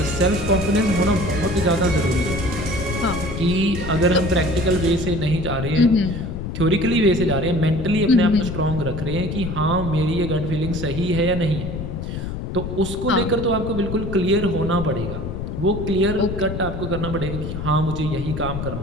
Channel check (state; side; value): noise; left; rumble, 5 dB below the sound